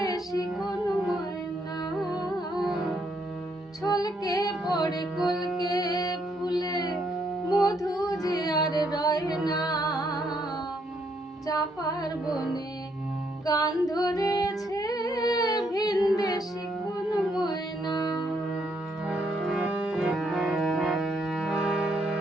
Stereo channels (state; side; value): normal; both; correlation 0.73